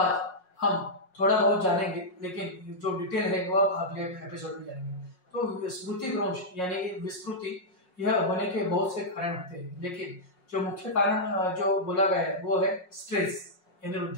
हम थोड़ा बहुत जानेंगे लेकिन जो डिटेल है वो आप अगले एपिसोड में जानेंगे। तो स्मृति भ्रंश यानी विस्मृति यह होने के बहुत से कारण होते हैं लेकिन जो मुख्य कारण जो बोला गया है वो है स्ट्रेस यानी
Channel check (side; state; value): right; late; 5.5 ms